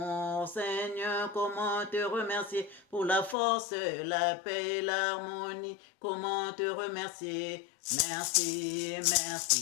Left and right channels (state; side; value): drops out; right; at 3.4 s